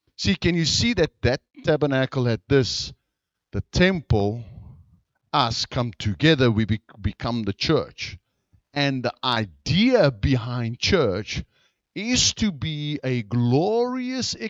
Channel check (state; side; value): identical; both; correlation 1.00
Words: See, can you see that tabernacle had this? The temple, us come together, we become the church. And the idea behind church is to be a glorious